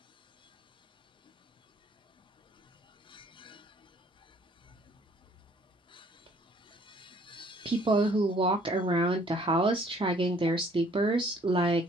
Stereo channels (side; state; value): both; normal; correlation 0.59